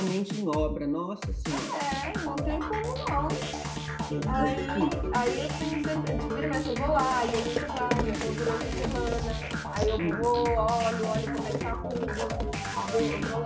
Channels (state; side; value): identical; both; correlation 1.00